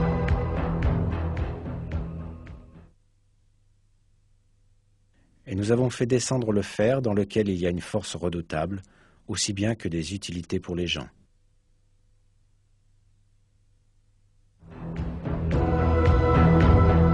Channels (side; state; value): both; identical; correlation 1.00